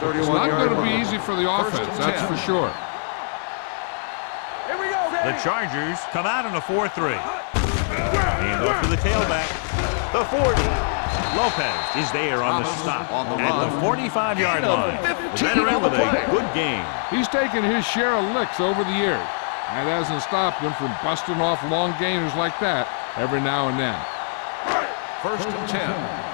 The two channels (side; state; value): right; silent; digital silence